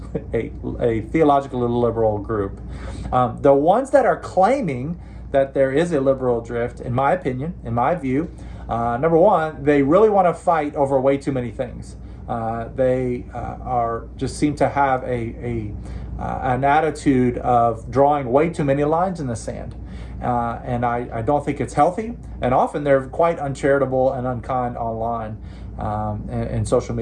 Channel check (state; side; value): identical; both; correlation 1.00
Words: a theologically liberal group. The ones that are claiming that there is a liberal drift, in my opinion, in my view, number one, they really want to fight over way too many things. They just seem to have an attitude of drawing way too many lines in the sand. And I don't think it's healthy. And often they're quite uncharitable and unkind online, in social